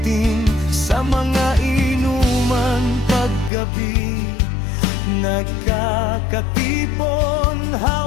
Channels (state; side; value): drops out; right; at 3.5 s